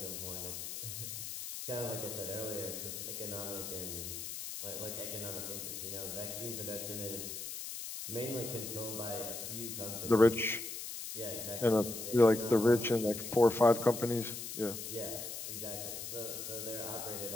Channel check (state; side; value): noise; left; hiss, 7 dB below the sound